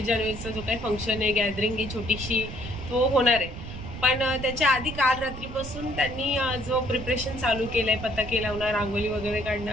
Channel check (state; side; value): noise; right; rumble, 10 dB below the sound